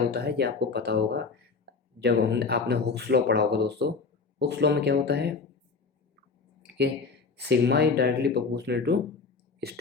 है, ये आपको पता होगा, जब हम आपने हुक्स लॉ पढ़ा होगा दोस्तों। हुक्स लॉ में क्या होता है कि sigma is directly proportional to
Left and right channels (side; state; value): right; quieter; 4.6 dB